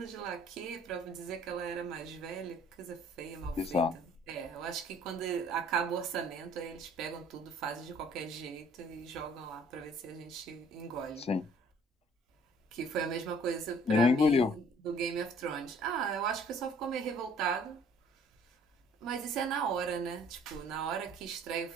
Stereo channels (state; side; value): normal; both; correlation 0.56